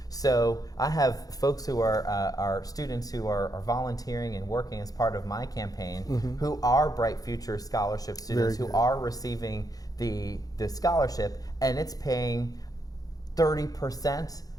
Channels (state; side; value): late; right; 0.18 ms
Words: So I have folks who are students who are volunteering and working as part of my campaign who are Bright Future Scholarship students, Very who good. are receiving the scholarship, and it's paying 30%